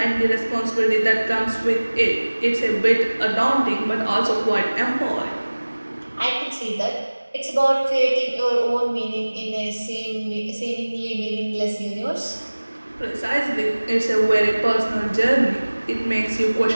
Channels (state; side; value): inverted; both; correlation -1.00